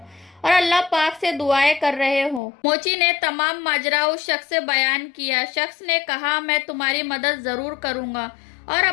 اور اللہ پاک سے دعائیں کر رہے ہو؟ موچی نے تمام ماجرا اس شخص سے بیان کیا۔ شخص نے کہا، میں تمہاری مدد ضرور کروں گا، اور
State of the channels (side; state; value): right; drops out; at 2.4 s